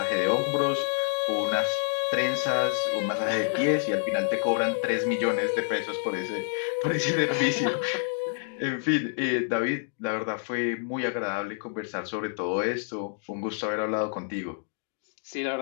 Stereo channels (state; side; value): silent; right; digital silence